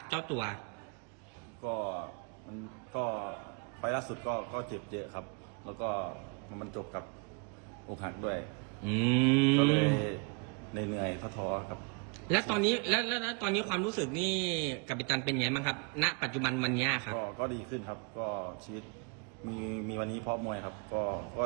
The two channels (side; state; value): left; quieter; 33.1 dB